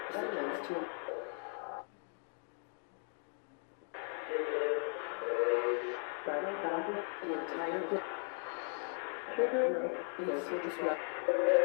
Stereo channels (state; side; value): silent; right; 53 dB below the other